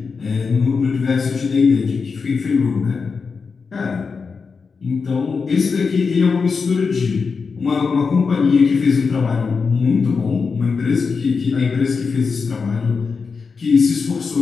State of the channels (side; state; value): right; quieter; 5.1 dB